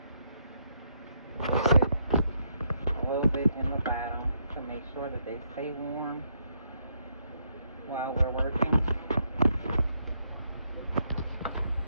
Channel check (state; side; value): inverted; both; correlation -0.75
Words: A little bit in the bottom to make sure that they stay warm while we're working.